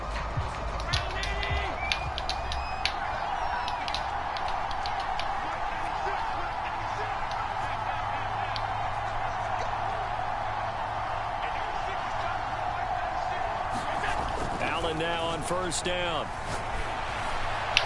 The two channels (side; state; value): both; identical; correlation 1.00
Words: Now on 1st down.